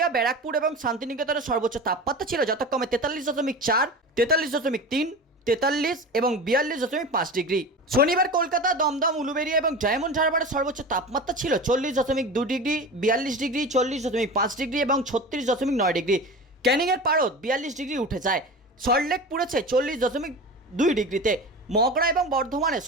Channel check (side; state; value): both; normal; correlation 0.31